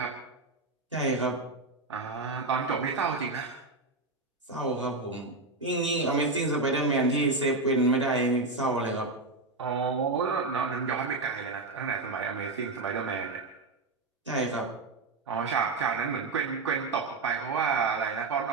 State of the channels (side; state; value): left; quieter; 3.4 dB